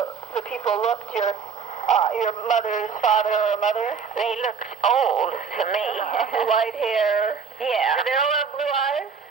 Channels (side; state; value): left; quieter; 5.9 dB